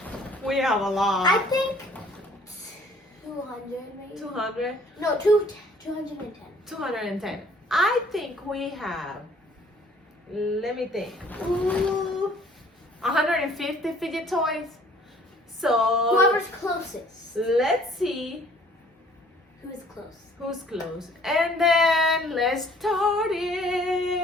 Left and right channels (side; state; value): both; normal; correlation 0.56